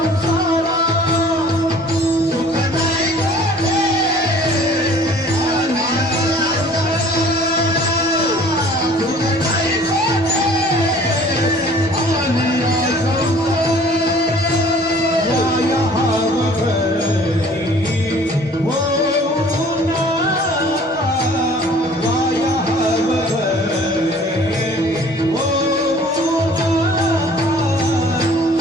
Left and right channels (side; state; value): both; normal; correlation 0.51